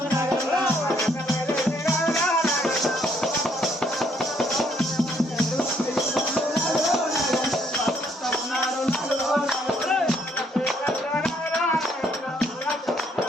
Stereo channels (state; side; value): normal; both; correlation 0.68